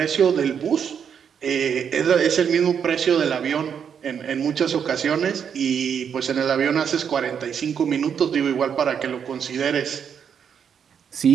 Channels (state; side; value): quieter; left; 7.6 dB